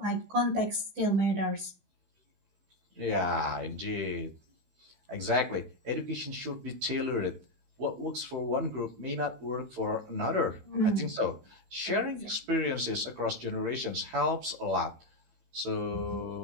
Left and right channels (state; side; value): late; left; 16 ms